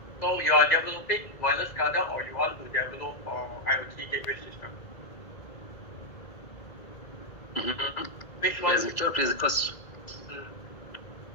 So you are developing wireless SCADA, or you want to develop IoT gateway system? Mm-hmm. Which one? Yes, Victor, please, question.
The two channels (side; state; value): right; late; 2.0 ms